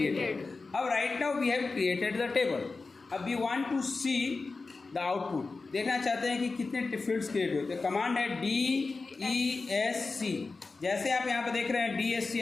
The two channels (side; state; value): right; quieter; 3.9 dB